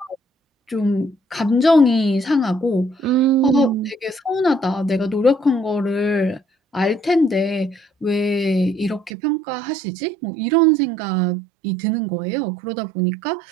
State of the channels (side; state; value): left; drops out; at 9.1 s